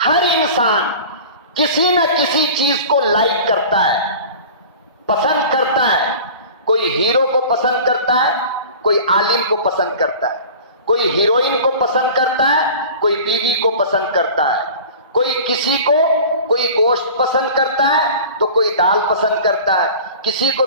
ہر انسان کسی نہ کسی چیز کو لائک کرتا ہے، پسند کرتا ہے۔ کوئی ہیرو کو پسند کرتا ہے، کوئی عالم کو پسند کرتا ہے، کوئی ہیروئن کو پسند کرتا ہے، کوئی بیوی کو پسند کرتا ہے، کوئی کسی کو کوئی گوشت پسند کرتا ہے تو کوئی دال پسند کرتا ہے، کسی کو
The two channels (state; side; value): inverted; both; correlation -0.39